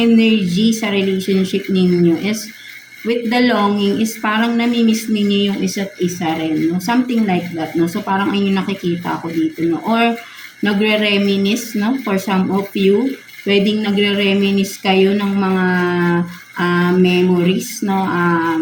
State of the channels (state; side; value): identical; both; correlation 1.00